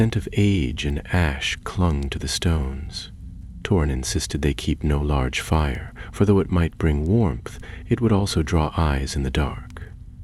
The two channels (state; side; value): identical; both; correlation 1.00